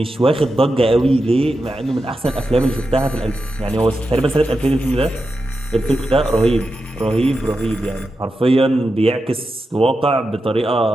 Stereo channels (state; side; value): normal; both; correlation 0.89